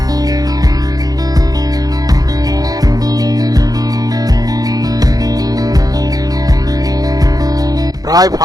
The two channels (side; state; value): left; late; 0.18 ms